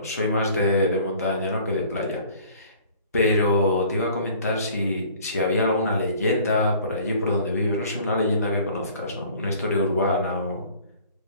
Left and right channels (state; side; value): inverted; both; correlation -0.51